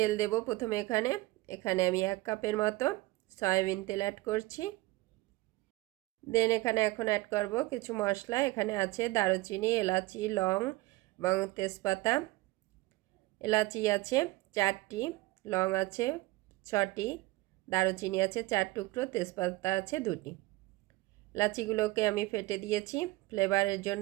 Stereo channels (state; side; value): quieter; left; 19.9 dB